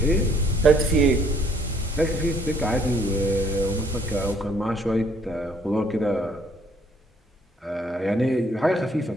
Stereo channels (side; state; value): both; normal; correlation 0.63